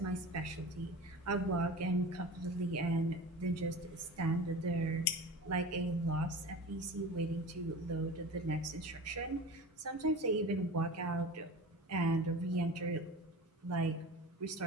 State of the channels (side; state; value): both; normal; correlation 0.34